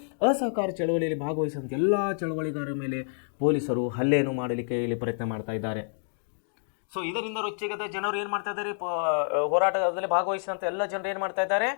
ಅಸಹಕಾರ ಚಳವಳಿಯಲ್ಲಿ ಭಾಗವಹಿಸಿದಂಥ ಎಲ್ಲ ಚಳವಳಿಗಾರರ ಮೇಲೆ ಪೊಲೀಸರು ಹಲ್ಲೆಯನ್ನು ಮಾಡಲಿಕ್ಕೆ ಇಲ್ಲಿ ಪ್ರಯತ್ನ ಮಾಡ್ತಾ ಇದ್ದಾರೆ. ಸೊ ಇದರಿಂದ ರೊಚ್ಚಿಗೆದ ಜನರು ಏನು ಮಾಡ್ತಾ ಇದ್ದಾರೆ? ಹೋರಾಟದಲ್ಲಿ ಭಾಗವಹಿಸಿದಂಥ ಎಲ್ಲ ಜನರು ಏನು ಮಾಡ್ತಾ ಇದ್ದಾರೆ?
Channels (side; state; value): right; silent; digital silence